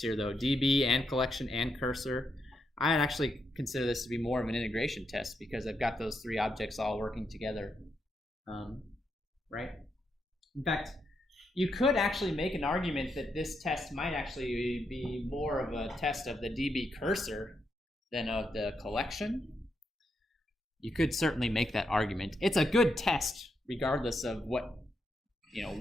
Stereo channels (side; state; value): both; normal; correlation 0.82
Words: though, DB and collection and cursor. I actually consider this to be more of an integration test because I've got those three objects all working together, right? In fact, you could actually make an argument that this test might actually be more of a test of the DB cursor than of the collection. You could certainly make that argument. It's a good test regardless of what,